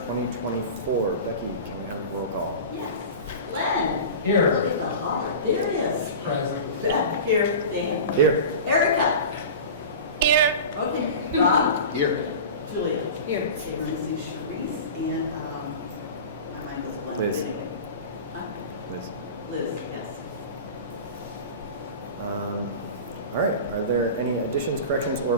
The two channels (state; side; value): inverted; both; correlation -0.33